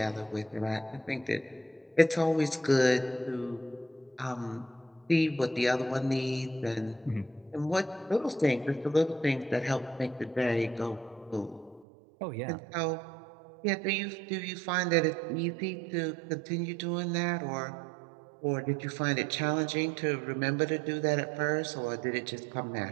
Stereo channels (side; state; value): left; drops out; at 11.9 s